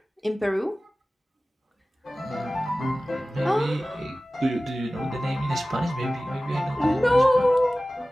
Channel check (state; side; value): normal; both; correlation 0.97